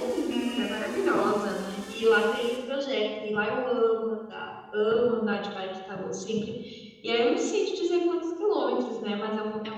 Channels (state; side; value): identical; both; correlation 1.00